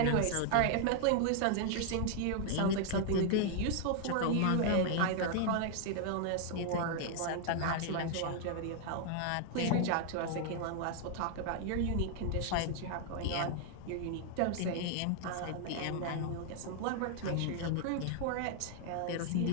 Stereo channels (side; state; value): both; different; correlation 0.00